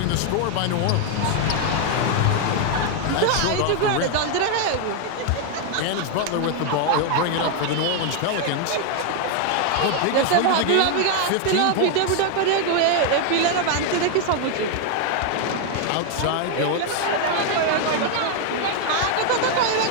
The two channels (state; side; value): different; both; correlation 0.01